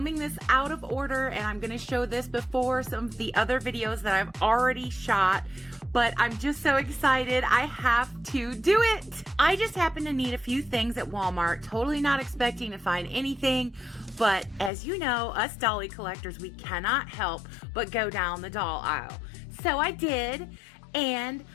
this out of order and I'm gonna show this before some of the other videos that I've already shot, but I'm just so excited I have to do it. I just happened to need a few things at Walmart, totally not expecting to find anything, but as you know, us dolly collectors, we cannot help but go down the doll aisle. So I did, and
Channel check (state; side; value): drops out; right; at 14.7 s